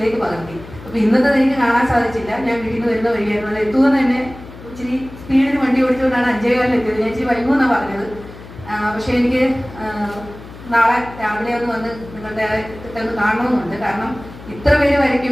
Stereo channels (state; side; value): noise; left; hum, 17 dB below the sound